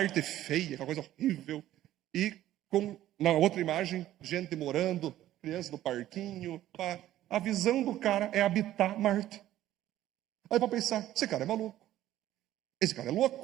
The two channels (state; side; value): quieter; left; 13.5 dB